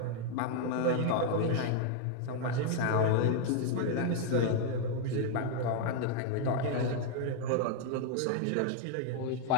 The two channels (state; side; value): different; both; correlation 0.00